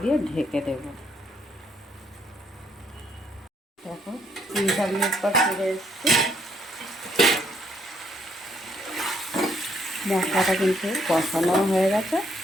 দিয়ে ঢেকে দেব। দেখো 3-4 মিনিট পর ফিরে এসেছি। মশলাটা কিন্তু কষানো হয়ে গেছে।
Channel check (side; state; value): both; normal; correlation 0.70